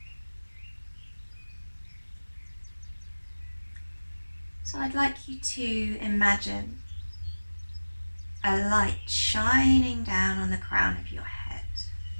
So I'd like you to imagine a light shining down on the crown of your head.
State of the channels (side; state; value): both; inverted; correlation -1.00